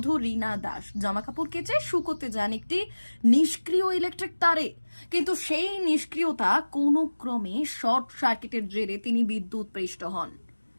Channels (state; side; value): inverted; both; correlation -1.00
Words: রীনা দাস জামাকাপড় কেচে শুকোতে যান একটি নিষ্ক্রিয় ইলেকট্রিক তারে। কিন্তু সেই নিষ্ক্রিয়তা কোনো ক্রমে শর্ট সার্কিটের জেরে তিনি বিদ্যুৎপৃষ্ট হন।